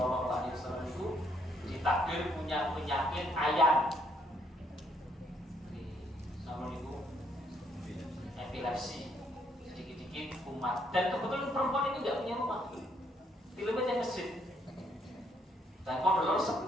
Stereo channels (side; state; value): both; normal; correlation 0.70